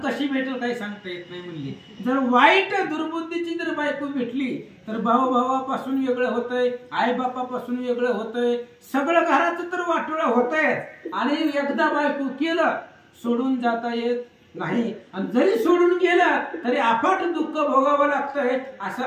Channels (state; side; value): identical; both; correlation 1.00